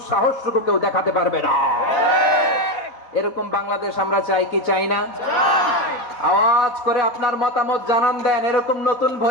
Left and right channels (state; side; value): late; right; 3.9 ms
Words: কেউ দেখাতে পারবে না। এরকম বাংলাদেশ আমরা চাই কি চাই না? আওয়াজ করে আপনার মতামত জানান দেন, এরকম নতুন